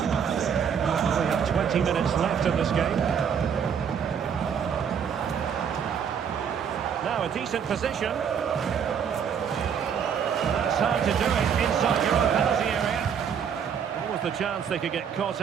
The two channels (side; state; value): left; quieter; 7.5 dB